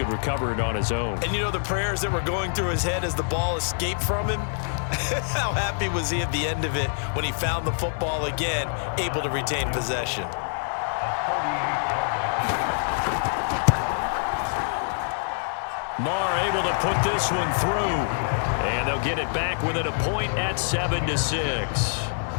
recover it on his own. And you know the prayers that were going through his head as the ball escaped from him? How happy was he at the end of it when he found the football again, able to retain possession? Marr able to put this one through. And they'll get it back within a point at 7-6.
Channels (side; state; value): right; silent; 60 dB below the other